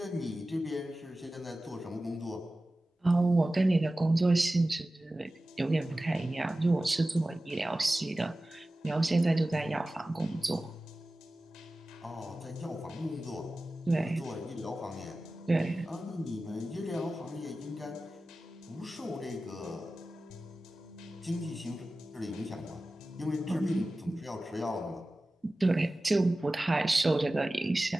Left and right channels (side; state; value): both; normal; correlation 0.96